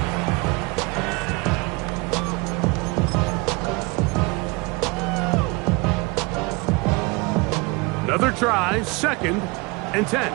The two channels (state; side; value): quieter; left; 26.6 dB